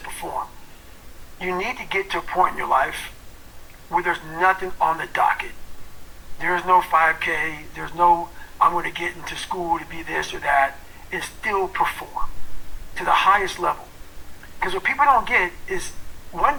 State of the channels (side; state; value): both; identical; correlation 1.00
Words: You need to get to a point in your life where there's nothing on the docket. There's no 5K. There's no, I'm going to get into school to be this or that, and still perform to the highest level. Because what people don't get is one